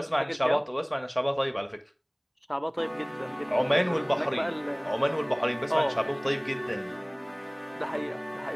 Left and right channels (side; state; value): both; identical; correlation 1.00